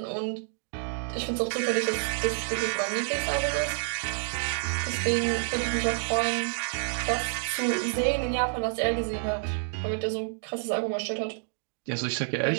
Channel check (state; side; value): silent; left; digital silence